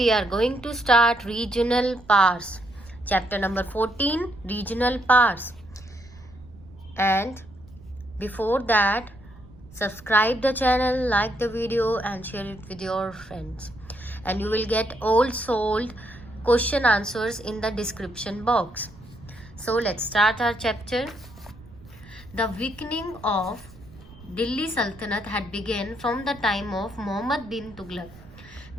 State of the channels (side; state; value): right; noise; rumble, 21 dB below the sound